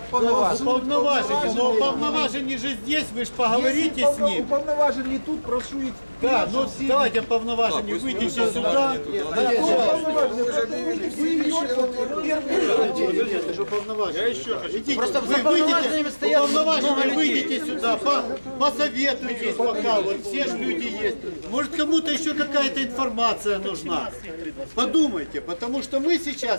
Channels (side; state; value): both; inverted; correlation -1.00